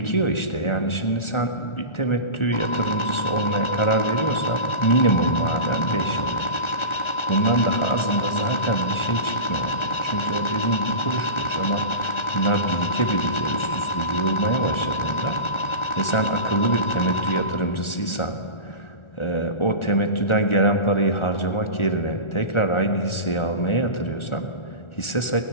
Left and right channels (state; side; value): late; right; 1.4 ms